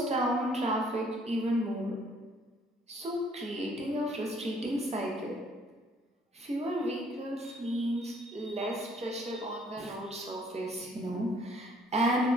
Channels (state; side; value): normal; both; correlation 0.62